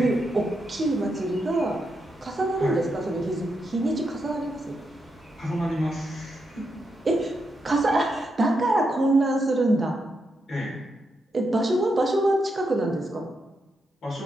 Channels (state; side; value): normal; both; correlation 0.83